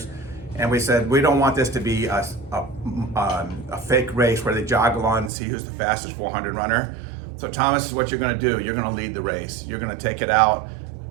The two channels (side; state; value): left; drops out; at 5.3 s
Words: And we said, we don't want this to be a fake race where they jog along and see who's the fastest 400 runner. So Thomas, is what you're going to do. You're going to lead the race. You're going to take it out.